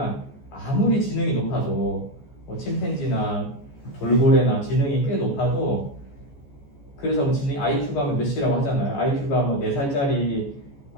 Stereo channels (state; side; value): late; right; 14 ms